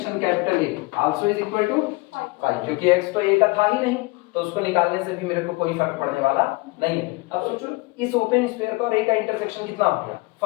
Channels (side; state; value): right; quieter; 24.2 dB